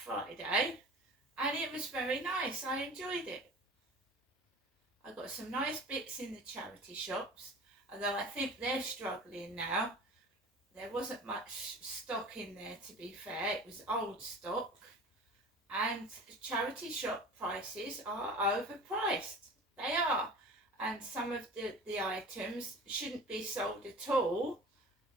and it was very nice. I enjoyed it. I got some nice bits in the charity shops, although I think they're struggling now. There wasn't much stock in there, to be fair. It was old stock. And charity shop prices are overpriced. They are. And some of the items shouldn't be sold at all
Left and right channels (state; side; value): normal; both; correlation 0.39